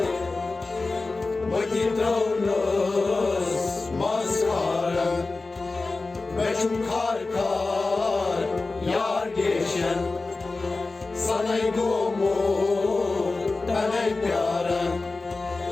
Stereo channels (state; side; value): quieter; right; 3.6 dB